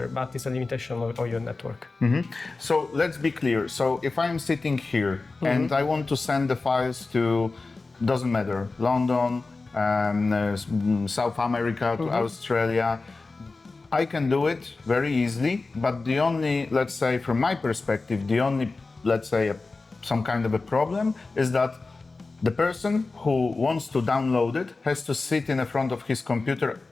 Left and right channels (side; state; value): right; quieter; 3.7 dB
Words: but it's a limitation of your network. So let's be clear. So if I'm sitting here and I want to send the files to, doesn't matter, London, South America, to Australia, I can do it very easily. But the only, let's say, from my perspective, the only, let's say, some kind of a problem is that the person who wants to download it has to sit in front of his computer